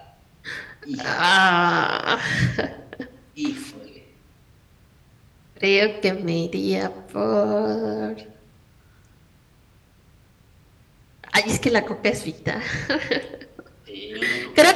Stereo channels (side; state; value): both; identical; correlation 1.00